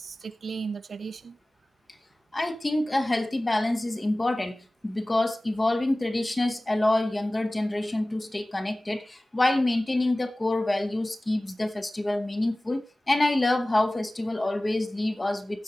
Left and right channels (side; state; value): both; normal; correlation 0.98